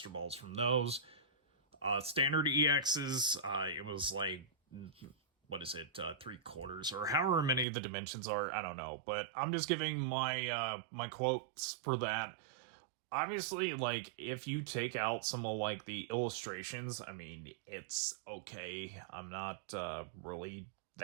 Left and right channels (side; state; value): left; drops out; at 7.7 s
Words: Balls from those. Standard EXs, it was like, what is it, 3/4, or however many the dimensions are, I don't know. But I'm just giving my my quotes for that. Obviously, like, if you take out some of, like, the illustrations, I mean, it's okay. I'm not really